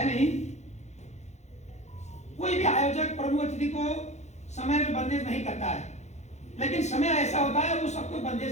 नहीं। कोई भी आयोजक प्रमुख अतिथि को समय में बंदेज नहीं करता है, लेकिन समय ऐसा होता है वो सबको बंदेज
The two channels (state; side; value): late; right; 0.33 ms